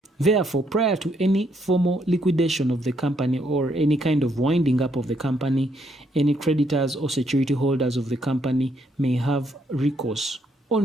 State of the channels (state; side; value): normal; both; correlation 0.73